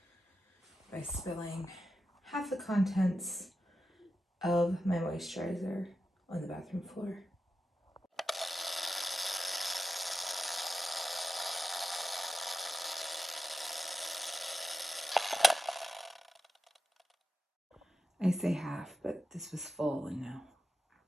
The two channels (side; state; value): both; normal; correlation 0.91